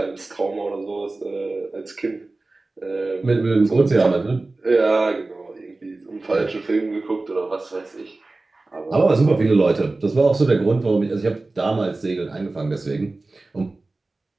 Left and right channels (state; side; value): quieter; left; 3.2 dB